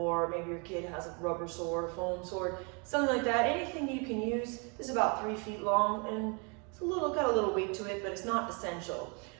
maybe your kid has a rubber sword, a foam sword, something like that. Anything you can use. This is about 3 feet long and it's got a little weight to it, but it's not essential.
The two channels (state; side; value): quieter; left; 34.2 dB